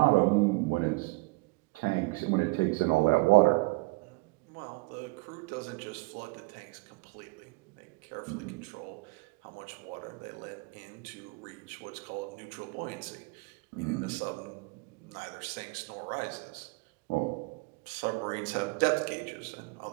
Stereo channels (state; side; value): quieter; left; 25.9 dB